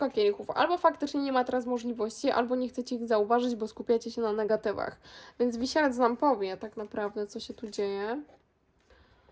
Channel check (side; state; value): both; identical; correlation 1.00